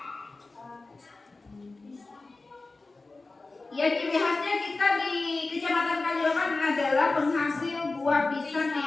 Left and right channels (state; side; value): quieter; right; 3.5 dB